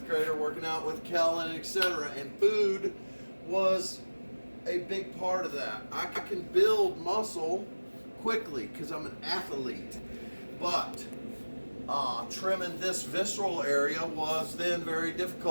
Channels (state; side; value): inverted; both; correlation -1.00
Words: grader working out with Kellen, etc. And food was a big part of that. I can build muscle quickly because I'm an athlete, but trimming this visceral area was then very